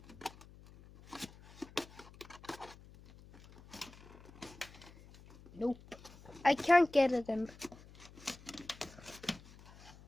Nope, I can't get it in.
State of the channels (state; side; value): noise; left; hum, 20 dB below the sound